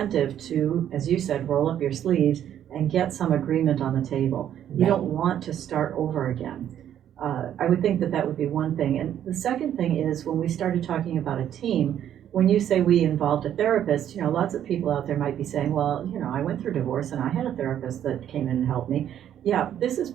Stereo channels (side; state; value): left; quieter; 10.4 dB